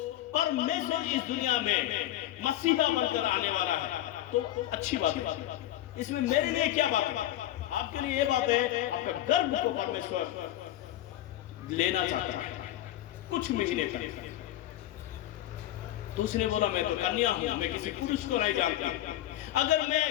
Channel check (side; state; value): right; quieter; 13.7 dB